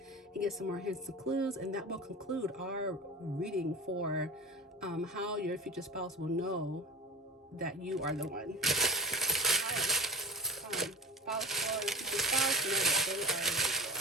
and get some more hints and clues, and that will conclude our reading for how your future spouse will know that you are the one. All right, spouse or future spouse know that they are the one.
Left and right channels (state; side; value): normal; both; correlation 0.36